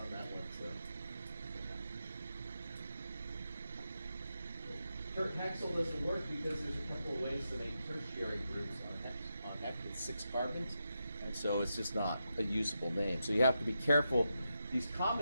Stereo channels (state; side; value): inverted; both; correlation -0.87